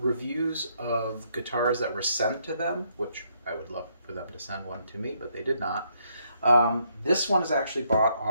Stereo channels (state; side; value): inverted; both; correlation -0.73